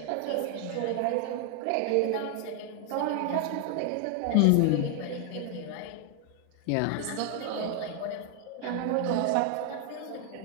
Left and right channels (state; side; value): different; both; correlation 0.00